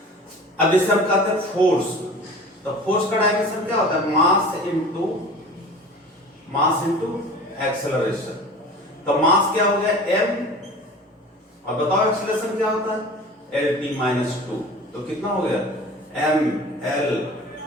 अब जैसे हम कहते हैं फोर्स, तो फोर्स का डायमेंशन क्या होता है, मास इनटू एक्सेलरेशन। तो मास क्या हो गया m, और बताओ एक्सेलरेशन क्या होता है, lt - 2। तो कितना हो गया, mlt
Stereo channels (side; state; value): both; normal; correlation 0.40